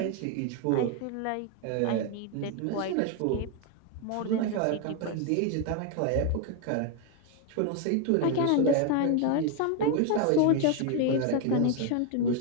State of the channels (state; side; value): different; both; correlation 0.01